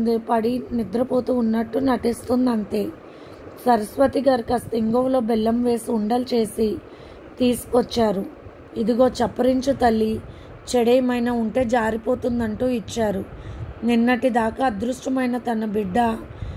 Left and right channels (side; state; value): both; identical; correlation 1.00